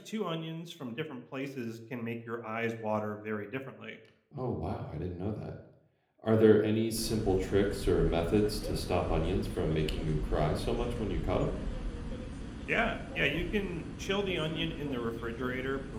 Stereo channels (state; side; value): identical; both; correlation 1.00